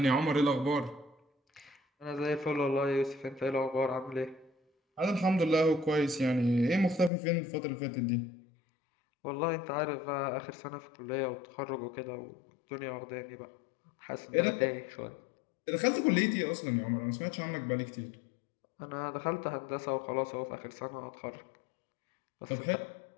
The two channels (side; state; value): right; drops out; at 7.1 s